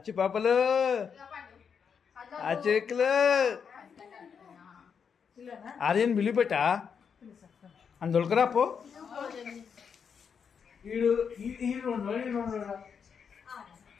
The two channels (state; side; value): quieter; right; 6.7 dB